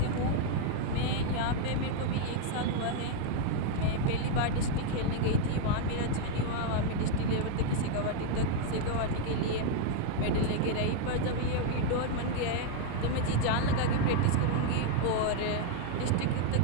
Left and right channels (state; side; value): different; both; correlation 0.00